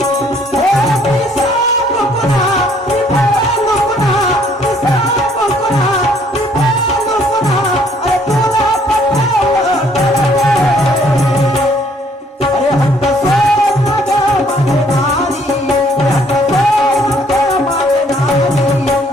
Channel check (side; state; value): both; normal; correlation 0.63